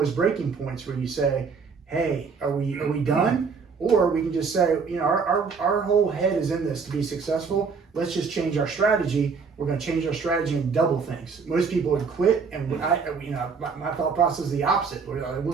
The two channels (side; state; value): left; quieter; 5.3 dB